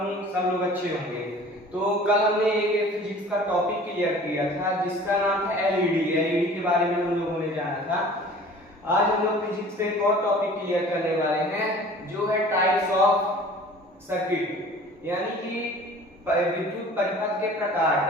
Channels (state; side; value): normal; both; correlation 0.46